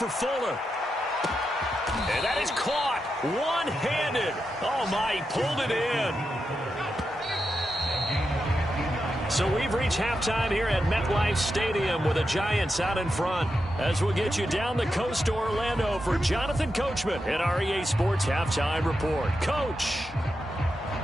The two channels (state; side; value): normal; both; correlation 0.87